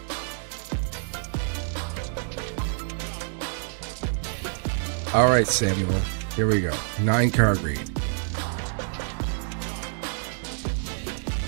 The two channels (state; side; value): silent; left; 59 dB below the other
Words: All right, Samuel. Here we go. 9 card read.